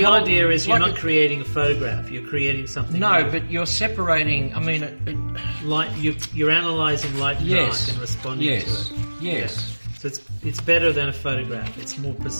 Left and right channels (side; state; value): both; inverted; correlation -1.00